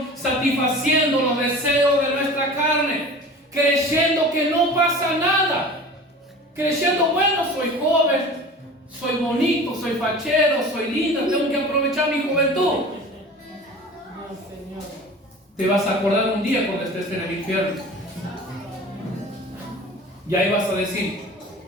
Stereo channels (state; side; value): normal; both; correlation 0.38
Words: satisfaciendo los deseos de nuestra carne, creyendo que no pasa nada, creyendo: bueno, soy joven, soy bonito, soy fachero, soy linda, tengo que aprovechar mi juventud. Te vas a acordar un día cuando estés en el infierno, y ahí vas a decir: